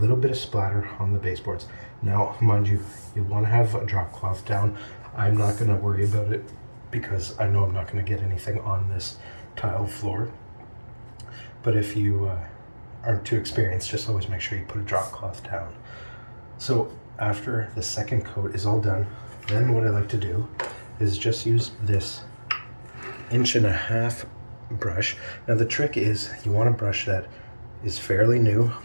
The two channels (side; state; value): both; inverted; correlation -1.00